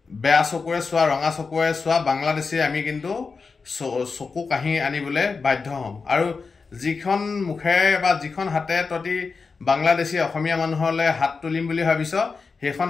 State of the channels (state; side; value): quieter; right; 4.7 dB